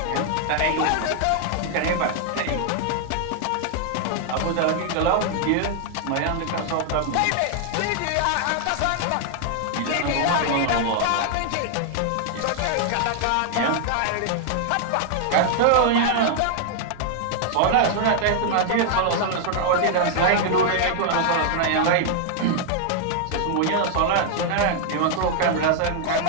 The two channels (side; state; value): both; different; correlation 0.00